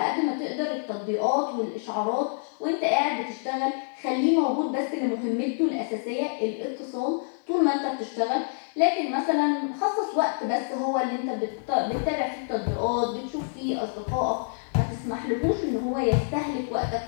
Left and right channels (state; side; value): silent; right; digital silence